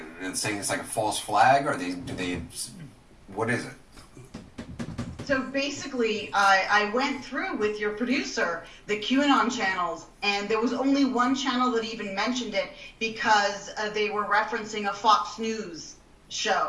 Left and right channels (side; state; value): both; identical; correlation 1.00